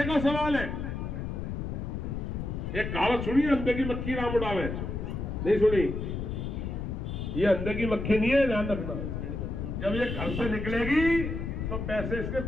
का सवाल है, एक कहावत सुनी, अंधे की मक्खी राम उड़ावे। नहीं सुनी? ये अंधे की मक्खी नहीं है, ध्यान रखना। जब ये घर से निकलेगी तो पैसे इसके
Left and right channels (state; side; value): noise; left; rumble, 4 dB below the sound